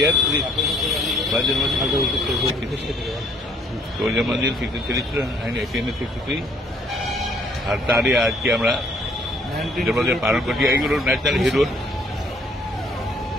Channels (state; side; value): normal; both; correlation 0.63